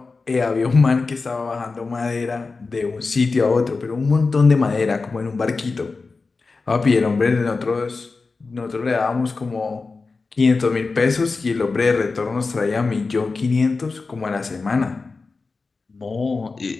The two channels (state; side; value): quieter; right; 4.1 dB